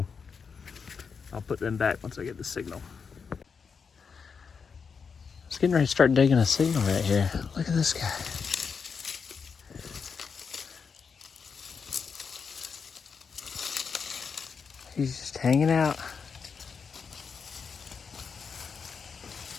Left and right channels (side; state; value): right; quieter; 5.8 dB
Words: I'll put them back once I get the signal. It's getting ready to start digging a signal right here. Look at this guy. He's just hanging out.